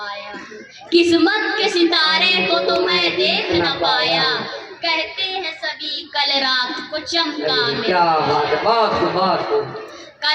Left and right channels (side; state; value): both; identical; correlation 1.00